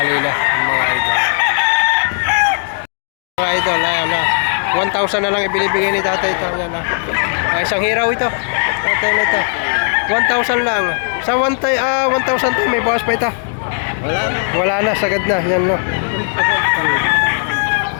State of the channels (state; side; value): silent; right; digital silence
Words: na mga idol. Mga idol, ayan 1,000 na lang ibinibigay ni tatay ito. Ayan isang hiraw ito. Tatay na ito. 1,000 lang. Sa 1,000 to may bawas pa ito. Wala na, sagad na. Yan no.